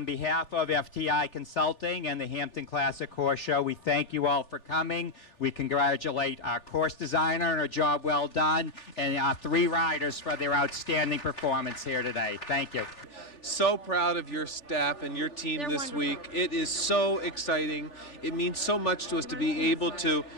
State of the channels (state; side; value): late; right; 3.4 ms